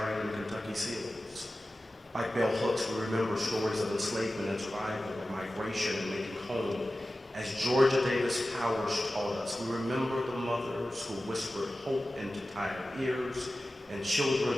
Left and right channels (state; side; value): normal; both; correlation 0.95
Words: in Kentucky seals. Like bell hooks, we remember stories of enslavement and survival, of migration and making home. As Georgia Davis Powers taught us, we remember the mothers who whispered hope into tired ears and children